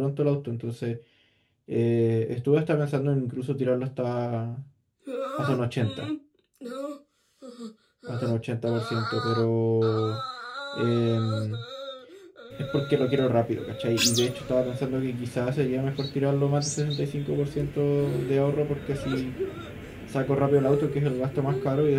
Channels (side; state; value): both; identical; correlation 1.00